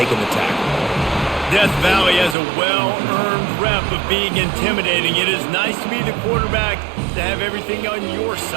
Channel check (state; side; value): drops out; left; at 2.4 s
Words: the tackle. Death Valley has a well-earned rep of being intimidating. It is nice to be the quarterback, to have everything on your